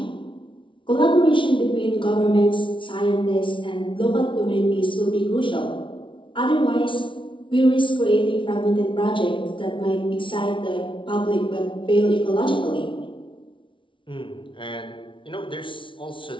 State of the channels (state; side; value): late; right; 0.25 ms